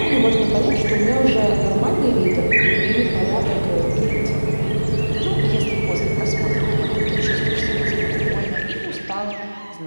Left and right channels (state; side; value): inverted; both; correlation -1.00